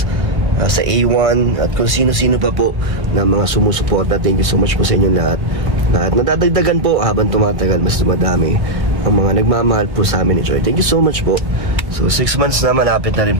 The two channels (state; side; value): late; left; 1.8 ms